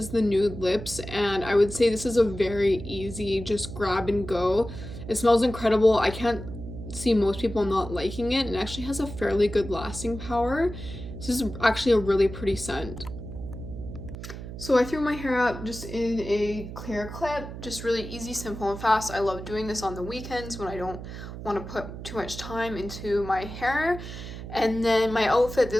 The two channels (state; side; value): noise; right; hum, 10 dB below the sound